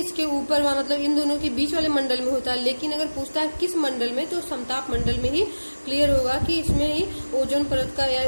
ऊपर मतलब इन दोनों के बीच वाले मंडल में होता है, लेकिन अगर पूछता है किस मंडल में, तो समताप मंडल में ही क्लियर होगा कि इसमें ही ओजोन परत का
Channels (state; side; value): inverted; both; correlation -1.00